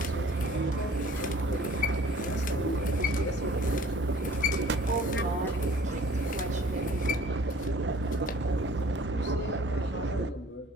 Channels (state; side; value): normal; both; correlation 0.52